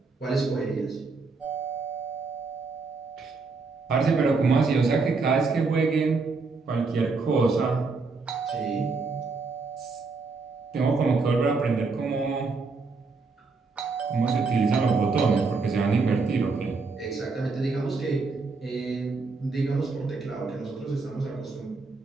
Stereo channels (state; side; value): quieter; left; 4.2 dB